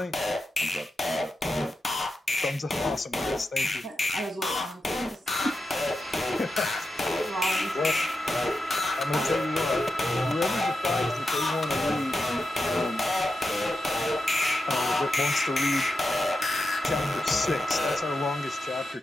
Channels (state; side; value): normal; both; correlation 0.89